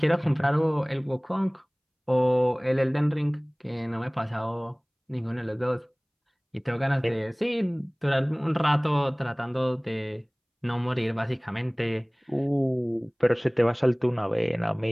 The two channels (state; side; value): identical; both; correlation 1.00